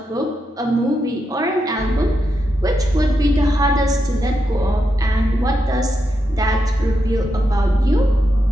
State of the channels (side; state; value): both; normal; correlation 0.85